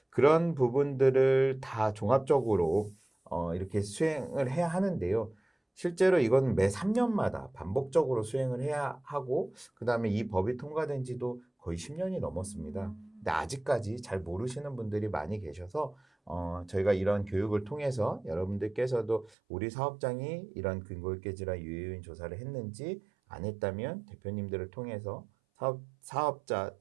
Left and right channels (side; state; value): left; drops out; at 19.3 s